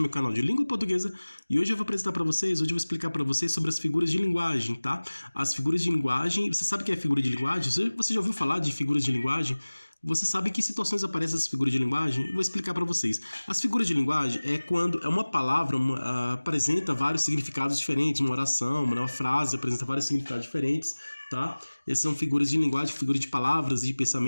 meu canal de língua portuguesa e hoje eu vou apresentar para vocês, hoje eu vou explicar para vocês sobre as figuras de linguagem, tá? As figuras de linguagem, você sabe o que é figura de linguagem? Você já ouviu falar de figuras de linguagem? Você sabe em que situações aparecem essas figuras de linguagem? Eu vou explicar para vocês. As figuras de linguagem é quando uma palavra apresenta vários significados diferentes, uma oração, uma frase apresenta vários significados diferentes, tá? Essas são figuras de linguagem, figuras de palavras e de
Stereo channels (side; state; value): both; inverted; correlation -1.00